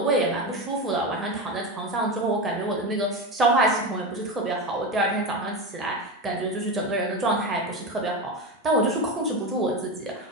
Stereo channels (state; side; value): normal; both; correlation 0.19